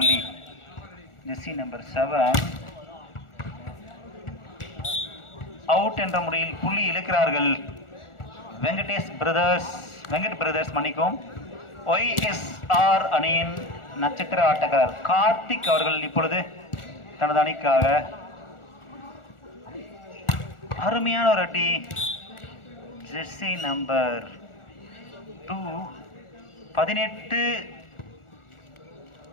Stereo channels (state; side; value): late; right; 1.4 ms